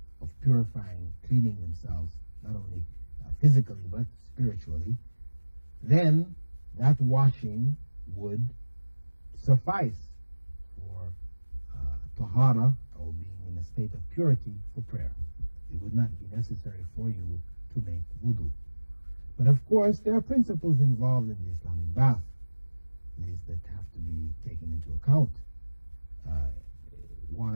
of purifying, cleaning themselves, not only physically but spiritually, then that washing would suffice for tahara, or being in a state of purity for prayer. It would not be necessary for you to make wudu. But of course, there are principles involved in the Islamic bath, these that have to be taken into account.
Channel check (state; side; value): inverted; both; correlation -1.00